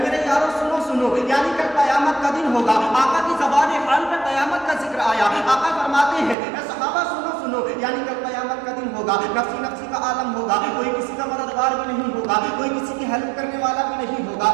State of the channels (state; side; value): drops out; left; at 6.4 s